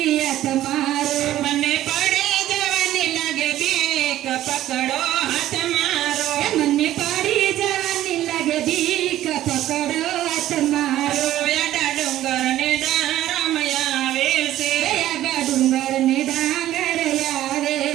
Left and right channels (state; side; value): quieter; left; 13.5 dB